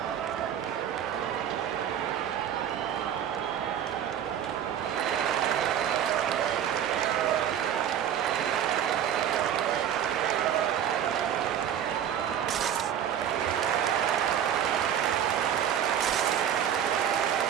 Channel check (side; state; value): left; quieter; 9.6 dB